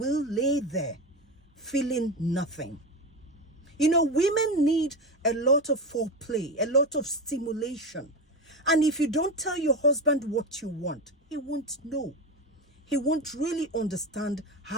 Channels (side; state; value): both; normal; correlation 0.20